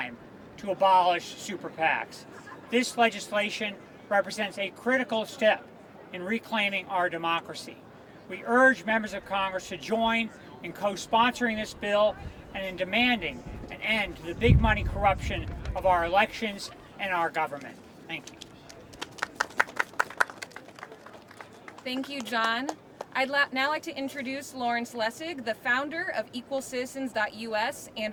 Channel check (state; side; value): identical; both; correlation 1.00